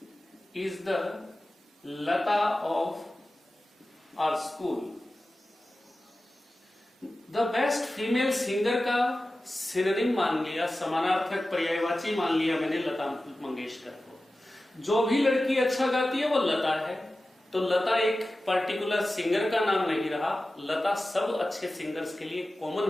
is the Lata of our school, the best female singer का सिनोनिम मान लिया, समानार्थक पर्यायवाची मान लिया मैंने लता मंगेशकर को। जो भी लड़की अच्छा गाती है वो लता है, तो लता एक पर्टिकुलर सिंगर का नाम नहीं रहा, लता सब अच्छे सिंगर्स के लिए कॉमन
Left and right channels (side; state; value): both; normal; correlation 0.95